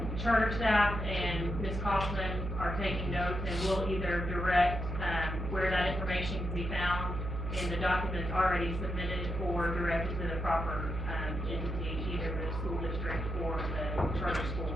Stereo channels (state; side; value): noise; right; hum, 4 dB below the sound